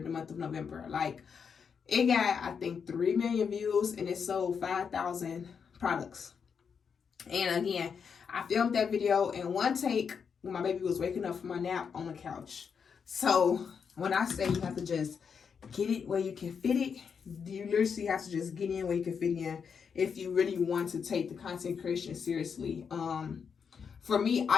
the month of November. Like it got, I think, 3 million views, and it sold 5,000 products. And again, I filmed that video in one take when my baby was waking up from my nap on the couch. So when I say you have to just get it where you can fit it, you literally have to just get in where you can fit in if you really want to take the content creation seriously. For me,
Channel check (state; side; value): quieter; right; 6.5 dB